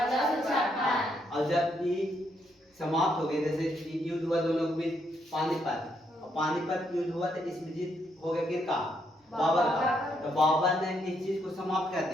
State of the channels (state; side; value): normal; both; correlation 0.76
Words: और जब ये समाप्त हो गए, जैसे युद्ध हुआ दोनों के बीच पानीपत, और पानीपत युद्ध हुआ तो इसमें जीत हो गया किसका? बाबर का। तो बाबर ने इस चीज को समाप्त कर